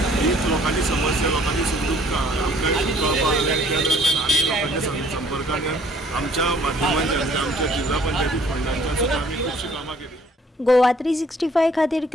हीच लोकांची समस्या लोकांची सुखदुःखां आमकां कळपाक लागली आनी लोकांच्या संपर्कान आमच्या माध्यमांच्यान आमच्या जिल्हा पंचायती फंडांच्या सुद्दां आमी खुबशीं कामां केली. गोवा 365 खातीर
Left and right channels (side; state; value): both; normal; correlation 0.59